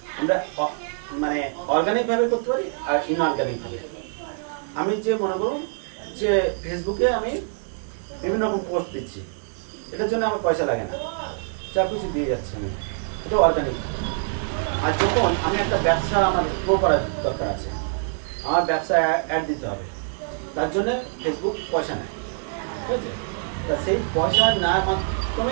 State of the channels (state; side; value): silent; left; 62 dB below the other